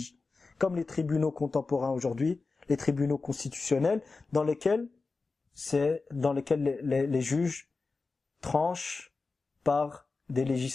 Comme les tribunaux contemporains aujourd'hui, les tribunaux constitutionnels dans lesquels les juges tranchent par des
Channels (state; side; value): quieter; right; 4.0 dB